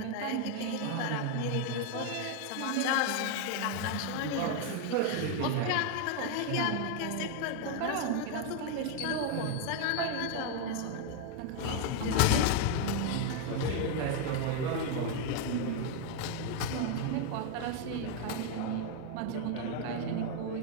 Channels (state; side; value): different; both; correlation 0.01